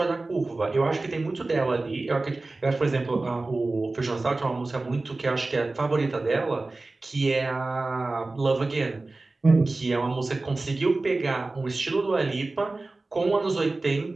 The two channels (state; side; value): quieter; left; 3.2 dB